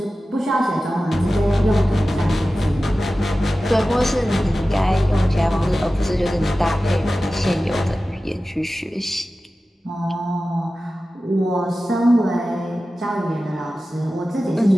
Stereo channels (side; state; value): both; normal; correlation 0.95